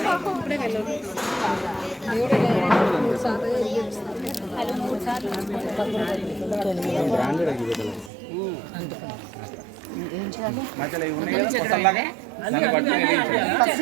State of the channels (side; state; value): left; drops out; at 8.1 s